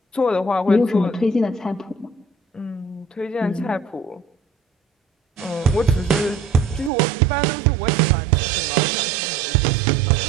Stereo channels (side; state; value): left; drops out; at 6.9 s